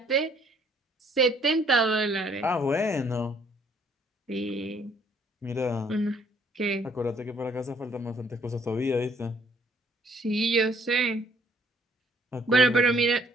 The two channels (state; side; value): normal; both; correlation 0.63